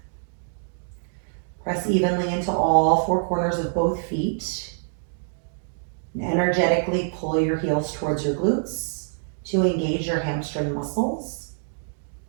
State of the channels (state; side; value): silent; left; digital silence